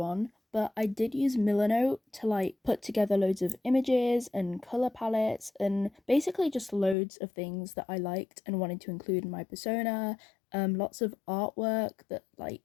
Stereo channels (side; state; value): right; drops out; at 7.0 s